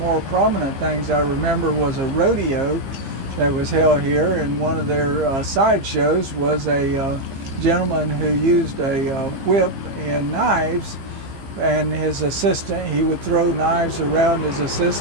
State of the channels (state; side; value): late; left; 15 ms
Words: prominent things I remember was a rodeo that was held here, and one of their side shows was a gentleman who used a whip and knives, and his assistant, he would throw knives around his